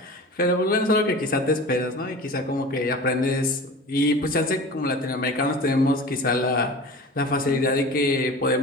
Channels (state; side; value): normal; both; correlation 0.36